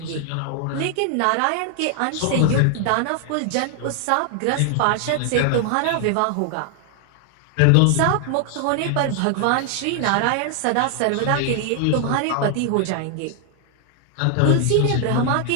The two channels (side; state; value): both; different; correlation 0.00